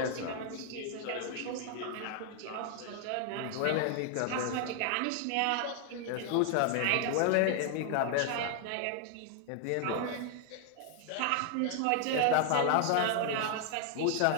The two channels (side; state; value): both; different; correlation 0.00